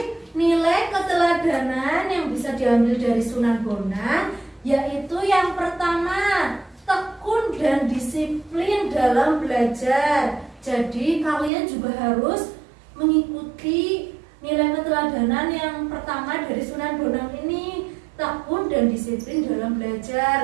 nilai keteladanan yang bisa diambil dari Sunan Bonang yaitu yang pertama, tekun dan disiplin dalam belajar. Jadi kalian juga harus mengikuti nilai keteladanan yang pertama dari Sunan Bonang ini, tekun dan disiplin dalam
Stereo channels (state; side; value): drops out; left; at 11.5 s